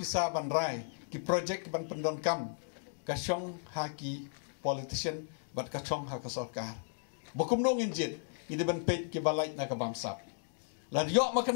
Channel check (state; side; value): silent; right; digital silence